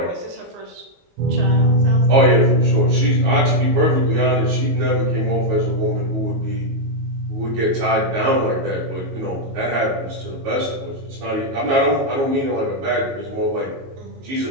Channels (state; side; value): late; left; 22 ms